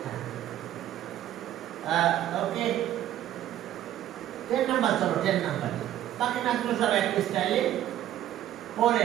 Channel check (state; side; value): quieter; left; 12.4 dB